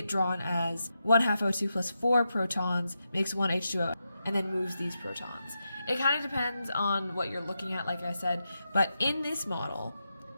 drawn as 1/2 O2 plus 4 protons makes 1 H2O and then moves these protons. It kind of depends on what you're looking at, like I said, but in this model,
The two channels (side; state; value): both; inverted; correlation -0.87